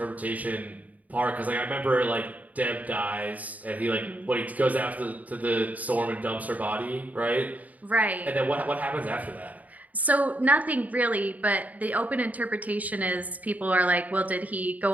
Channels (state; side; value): late; left; 0.074 ms